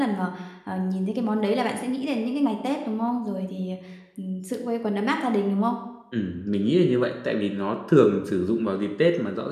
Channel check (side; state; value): both; identical; correlation 1.00